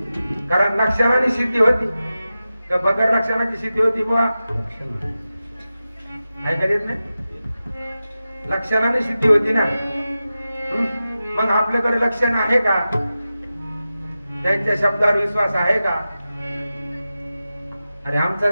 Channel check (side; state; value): both; inverted; correlation -0.94